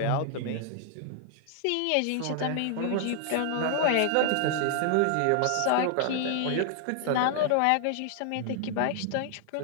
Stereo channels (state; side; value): different; both; correlation 0.00